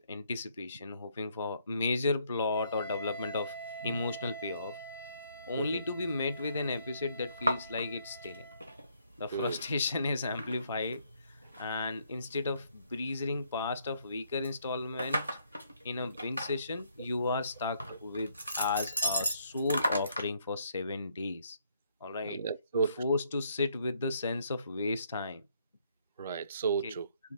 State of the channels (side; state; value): both; inverted; correlation -0.69